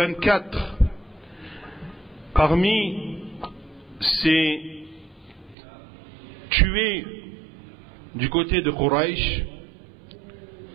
parmi ces tués du côté de Quraysh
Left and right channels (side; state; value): left; drops out; at 5.6 s